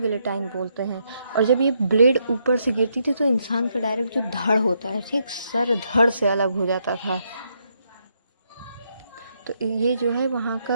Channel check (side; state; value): both; inverted; correlation -0.77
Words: बोलते हैं। और जब ये ब्लेड ऊपर से गिरती थी तो इंसान का डायरेक्ट जो धड़ होता है, ठीक, सर धड़ से अलग हो जाता था। तो ये जो है वहाँ